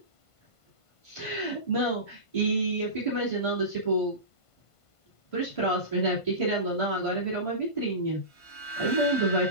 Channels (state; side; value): late; right; 1.5 ms